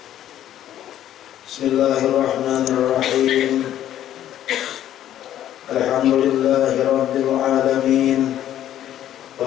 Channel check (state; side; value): quieter; right; 11.7 dB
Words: Bismillahirrahmanirrahim. Alhamdulillahi rabbil alamin.